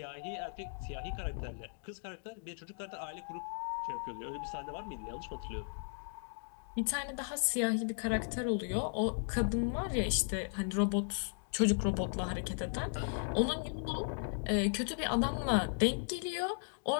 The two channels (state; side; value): silent; right; digital silence